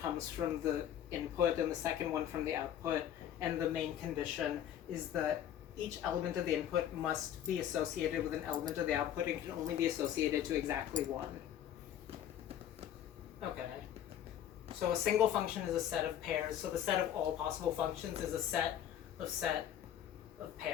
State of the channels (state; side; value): quieter; right; 10.5 dB